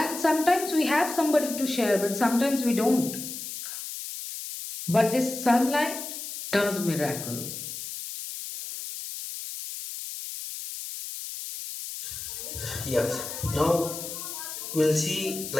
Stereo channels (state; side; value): noise; left; hiss, 8 dB below the sound